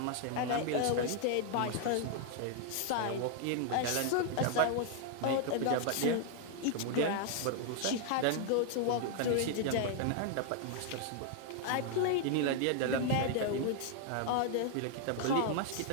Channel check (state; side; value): different; both; correlation 0.00